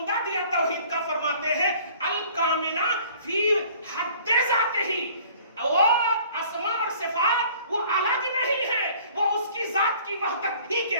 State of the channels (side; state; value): both; inverted; correlation -0.51